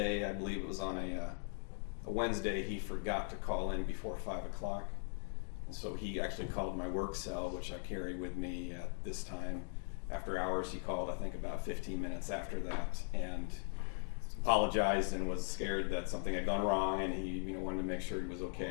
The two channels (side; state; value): right; silent; 51 dB below the other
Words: I believe it was on a Wednesday, he forgot to call in before 5 o'clock. And so he actually called my work cell, which I carry with me at this time. After hours, he called, I think, about 15 minutes after that, and apologized and was scared that something had gone wrong, and he wanted to make sure he was